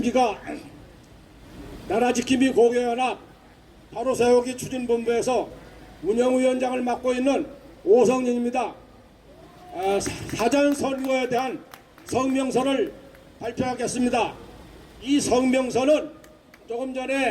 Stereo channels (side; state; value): both; identical; correlation 1.00